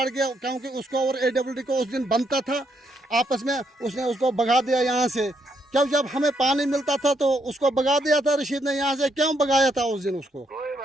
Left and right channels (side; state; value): both; normal; correlation 0.75